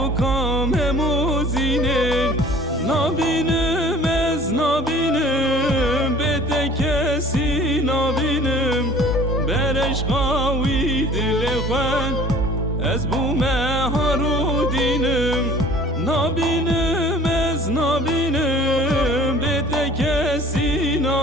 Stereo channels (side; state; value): both; normal; correlation 0.49